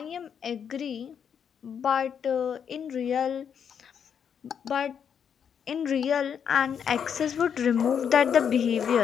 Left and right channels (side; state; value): right; quieter; 7.7 dB